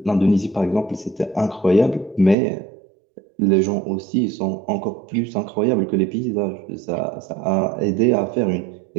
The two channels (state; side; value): drops out; left; at 2.4 s